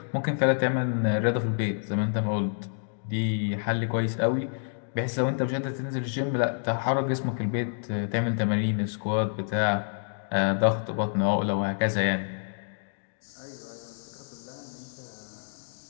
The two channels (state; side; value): silent; right; digital silence